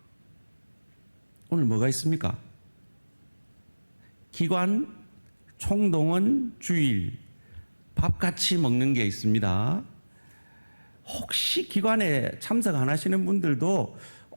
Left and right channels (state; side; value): inverted; both; correlation -1.00